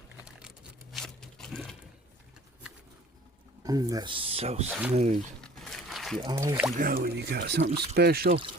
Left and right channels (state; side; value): normal; both; correlation 0.49